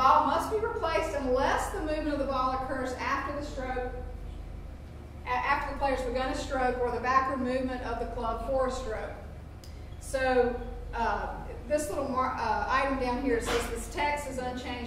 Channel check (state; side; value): identical; both; correlation 1.00